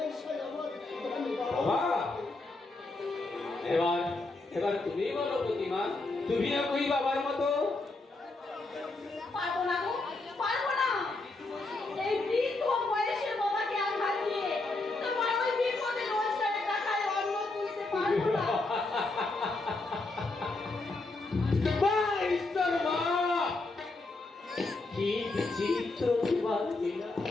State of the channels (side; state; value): right; quieter; 3.2 dB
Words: আমার বাবা এবার তুমি বলো প্রতিমা, তুমিও কই বাবার মতো? পারবো না গো, পারবো না। এই বৃদ্ধ বয়সের বাবাকে আঘাত দিয়ে তোমার ওই বিপদে রোজগারের টাকায় অন্ন তুলতে পারবো না। মা, ঈশ্বর মা, কি বিচিত্র তোমার লীলা,